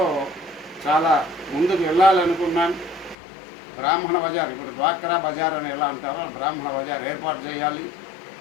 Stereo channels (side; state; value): right; drops out; at 3.2 s